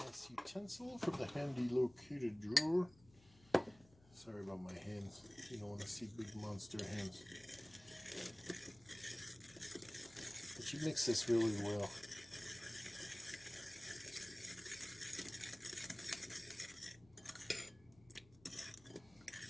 utensil from the handy located drawer. Sorry about my hands. You don't want to see big monster hands. But you mix this really well.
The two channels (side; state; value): left; noise; hum, 25 dB below the sound